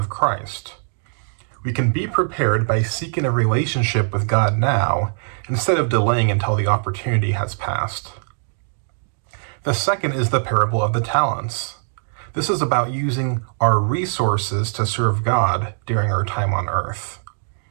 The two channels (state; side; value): silent; left; digital silence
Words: Christ. We can be prepared by seeking a relationship with God now, instead of delaying until the opportunity has passed. The second is the parable of the talents. This is about using our resources to serve God during our time on earth.